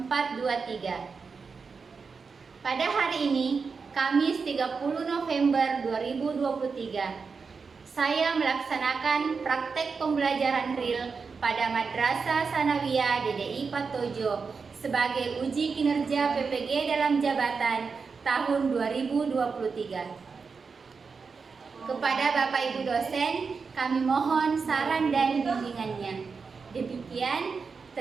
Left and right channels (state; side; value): quieter; left; 5.1 dB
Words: Pada hari ini, Kamis 30 November 2023, saya melaksanakan praktek pembelajaran real pada Madrasah Sanawiyah DDI Patojo sebagai uji kinerja PPG dalam jabatan tahun 2023. Kepada Bapak Ibu dosen, kami mohon saran dan bimbingannya. Demikian,